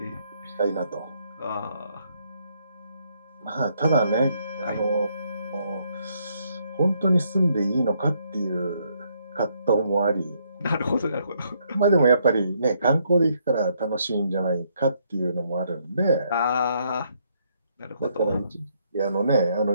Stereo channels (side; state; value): both; inverted; correlation -0.72